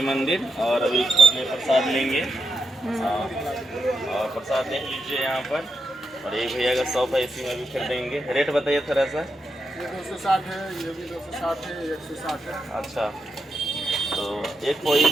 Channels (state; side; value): normal; both; correlation 0.84